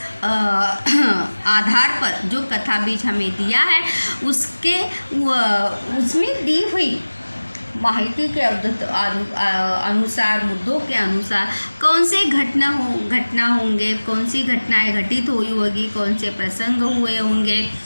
आधार पर जो कथा बीज हमें दिया है उसमें दी हुई माहिती के अनुसार, मुद्दों के अनुसार कौन से घटना होंगे, कौन सी घटनाएं घटित हुई होगी, कौन से प्रसंग हुए होंगे,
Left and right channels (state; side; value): inverted; both; correlation -1.00